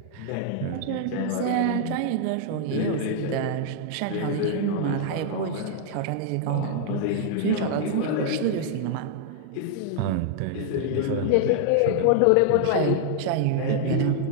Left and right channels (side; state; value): both; different; correlation -0.01